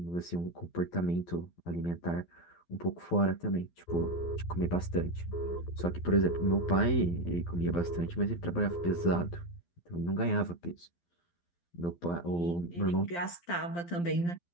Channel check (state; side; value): late; right; 12 ms